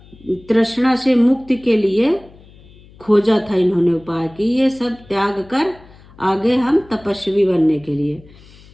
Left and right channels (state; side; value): noise; left; hum, 24 dB below the sound